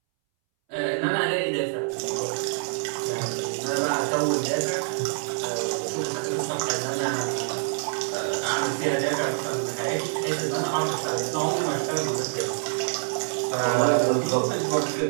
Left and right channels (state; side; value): silent; left; 61 dB below the other